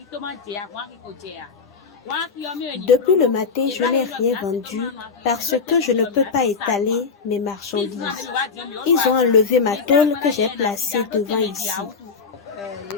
Depuis le matin, je n'ai rien vendu parce que je ne peux pas étaler mes marchandises. Ils ont enlevé ma tôle que j'ai placée devant ici.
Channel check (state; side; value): quieter; right; 5.1 dB